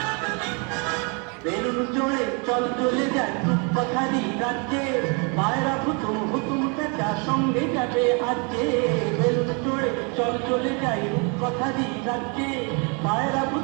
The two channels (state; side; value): quieter; left; 34.0 dB